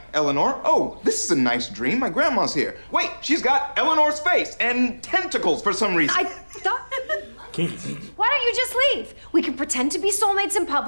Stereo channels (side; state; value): both; inverted; correlation -1.00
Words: Eleanor. Oh, this is a nice dream. My grandma's here. Wait, she's got Eleanor's face and tentacles for some reason. I thought... Kinky. Why don't you just leave? We can pretend to be soulmates in